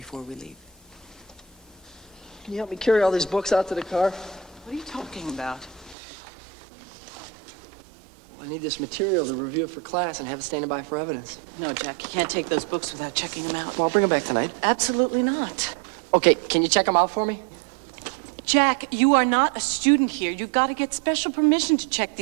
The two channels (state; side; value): drops out; left; at 6.0 s